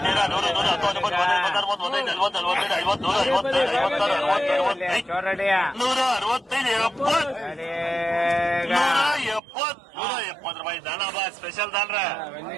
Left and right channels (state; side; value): drops out; left; at 9.4 s